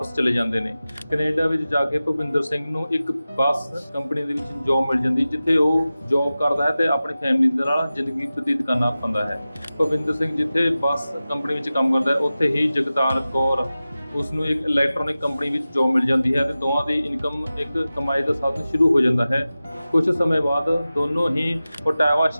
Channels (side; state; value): both; inverted; correlation -0.95